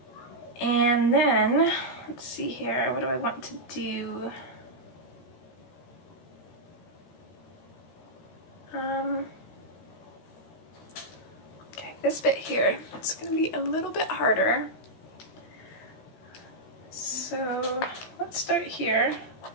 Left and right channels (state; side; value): late; right; 16 ms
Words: And then, let's see here, what do I want to do? Okay, this bit here, it's going to be a little bit harder. So, let's start here.